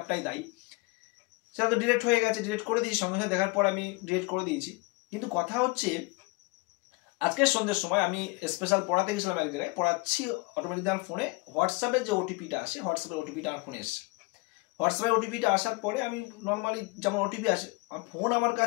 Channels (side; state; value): right; quieter; 26.5 dB